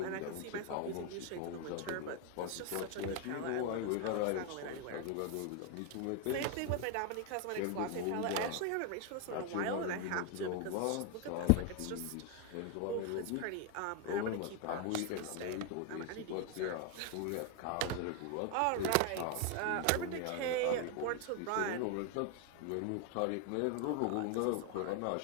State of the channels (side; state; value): both; different; correlation 0.01